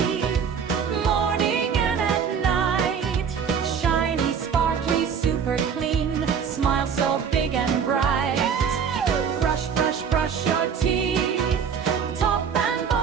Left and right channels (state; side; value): quieter; left; 7.0 dB